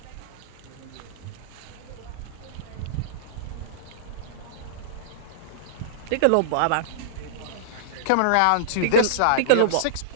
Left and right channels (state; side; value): different; both; correlation -0.02